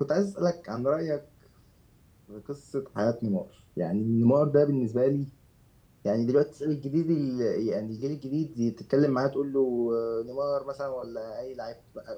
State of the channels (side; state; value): both; identical; correlation 1.00